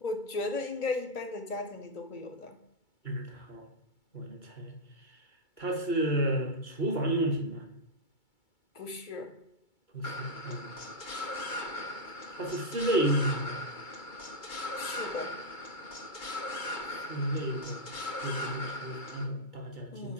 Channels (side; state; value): right; late; 2.3 ms